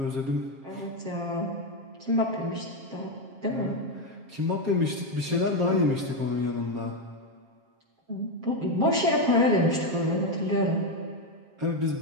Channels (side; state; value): left; late; 7.4 ms